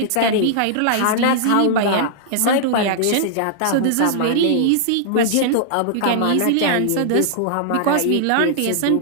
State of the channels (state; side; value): different; both; correlation -0.01